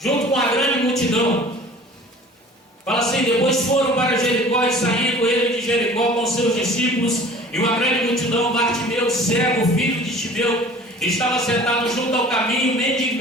com a grande multidão. Fala assim: depois foram para Jericó, e saindo ele de Jericó com seus discípulos e uma grande multidão, Bartimeu, cego, filho de Timeu, estava sentado junto ao caminho,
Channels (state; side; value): normal; both; correlation 0.46